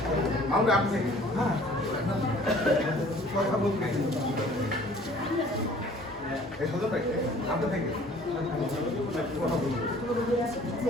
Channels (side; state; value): both; normal; correlation 0.52